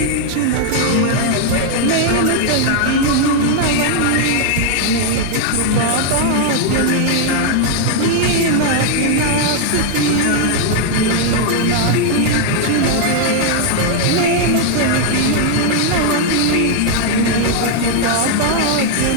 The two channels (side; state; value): both; different; correlation 0.00